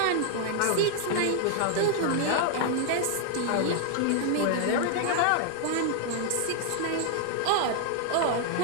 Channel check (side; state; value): both; different; correlation 0.00